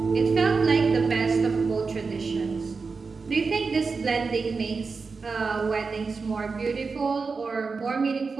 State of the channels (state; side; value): quieter; left; 4.6 dB